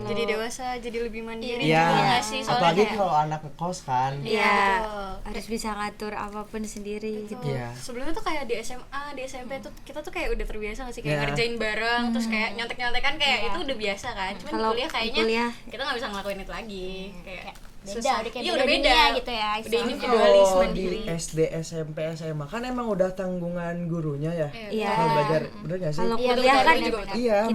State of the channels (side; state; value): both; identical; correlation 1.00